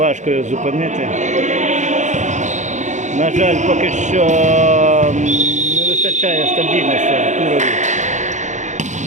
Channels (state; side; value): late; left; 0.35 ms